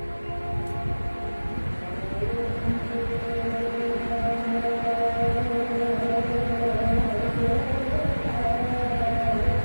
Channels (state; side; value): inverted; both; correlation -1.00